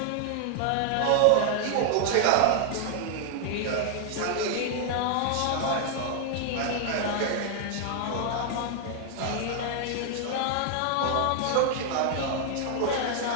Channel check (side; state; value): both; different; correlation 0.00